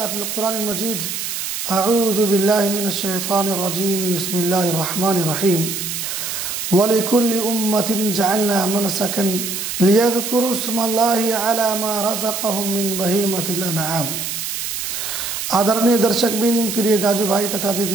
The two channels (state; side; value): noise; right; hiss, 4 dB below the sound